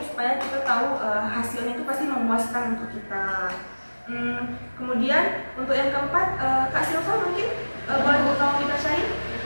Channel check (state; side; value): inverted; both; correlation -1.00